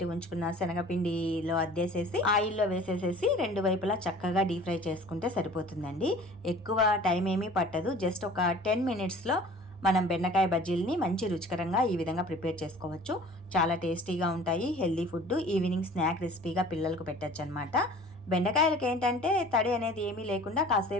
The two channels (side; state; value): both; normal; correlation 0.46